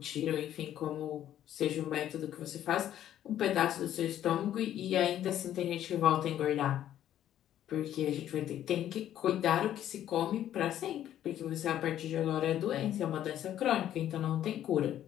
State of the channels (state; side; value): quieter; right; 11.5 dB